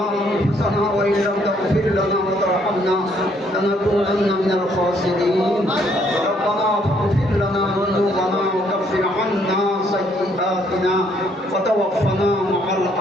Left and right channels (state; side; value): normal; both; correlation 0.68